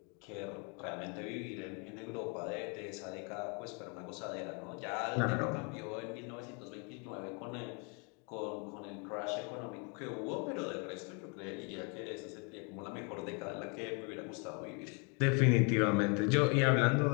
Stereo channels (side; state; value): right; quieter; 35.1 dB